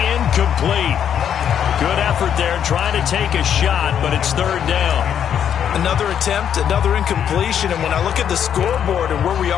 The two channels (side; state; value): right; quieter; 8.9 dB